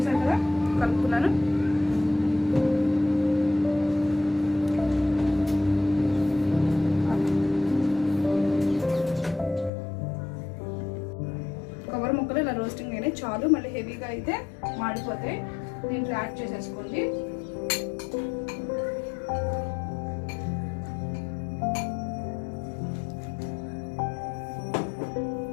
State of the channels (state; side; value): drops out; right; at 9.7 s